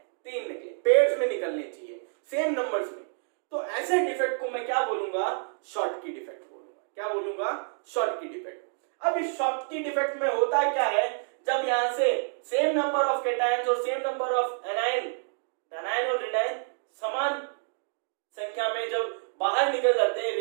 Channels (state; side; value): silent; left; digital silence